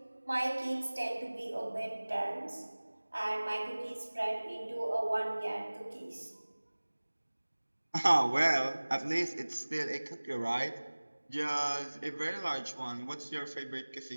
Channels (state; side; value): inverted; both; correlation -1.00